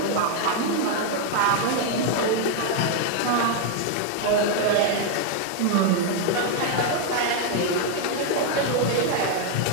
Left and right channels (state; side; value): different; both; correlation 0.00